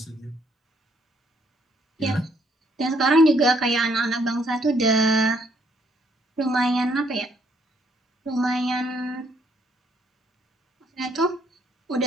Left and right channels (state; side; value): normal; both; correlation 0.69